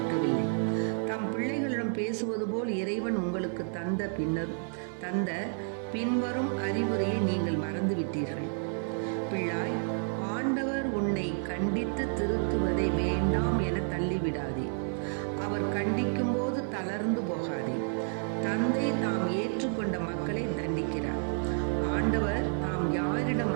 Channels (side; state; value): left; silent; 58 dB below the other